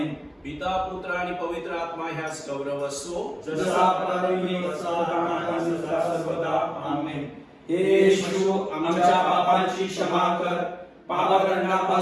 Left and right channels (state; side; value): identical; both; correlation 1.00